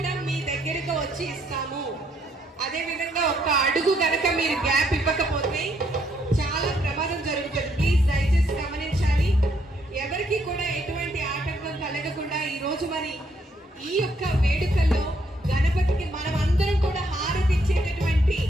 మీ దగ్గరకు వచ్చి ఇస్తాము. అదే విధంగా ఒక్క అడుగు గనక మీరు గ్యాప్ ఇవ్వకపోతే చాలా ప్రమాదం జరుగుతుంది. ప్లీజ్ దయచేసి గమనించాలి. ఎవరికి కూడా ఎటువంటి ఆటంకం కలగకుండా ఈ రోజు మరి ఈ యొక్క వేడుకల్లో గణపతికి మనం అందరం కూడా హారతి ఇచ్చేటటువంటి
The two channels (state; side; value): normal; both; correlation 0.72